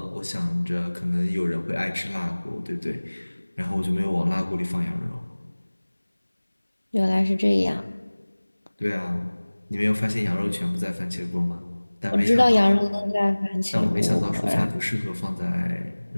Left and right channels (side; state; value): both; inverted; correlation -1.00